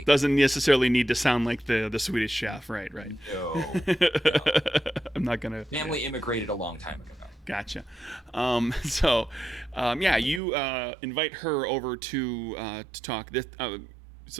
Doesn't necessarily need to sound like the Swedish chef, right? No. I'm not gonna. Family immigrated a long time ago. Gotcha. You invite her over to talk. This,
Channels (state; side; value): drops out; left; at 10.4 s